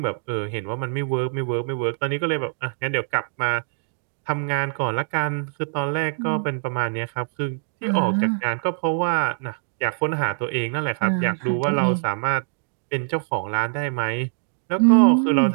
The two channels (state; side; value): silent; left; digital silence